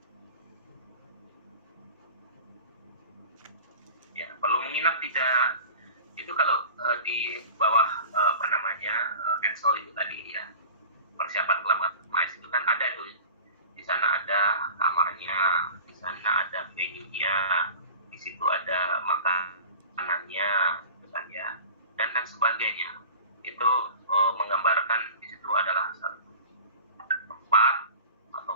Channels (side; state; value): both; inverted; correlation -0.38